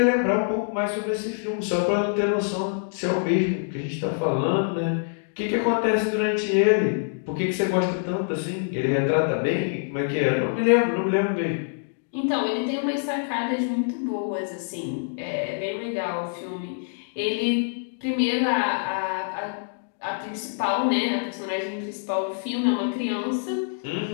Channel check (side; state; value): right; silent; digital silence